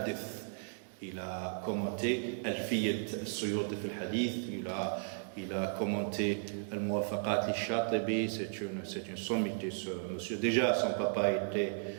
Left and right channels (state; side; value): silent; left; digital silence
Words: il a commenté Al-Fiyat al-Suyuti fil Hadith, il a commenté Al-Muwafaqat al-Shatibi, c'est une sommité ce monsieur. Déjà son papa était